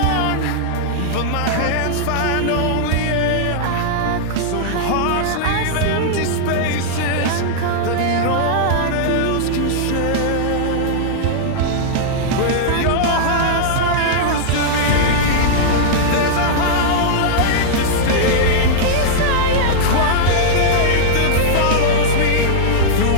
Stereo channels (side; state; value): both; different; correlation -0.01